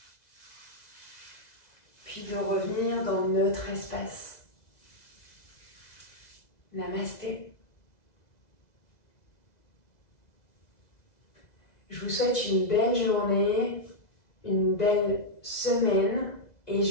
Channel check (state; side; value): late; right; 2.0 ms